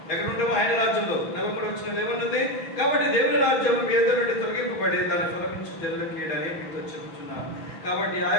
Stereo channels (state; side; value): late; right; 6.3 ms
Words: ఆయన రాజ్యంలో. 43వ వచనం ఏమన్నది? కాబట్టి దేవుని రాజ్యం మీ ఎదురు నుండి తొలగింపబడి దాన్ని ఫలమించు జనులకు ఇయ్యడని మీతో చెబుతున్నాను. కాబట్టి ఆ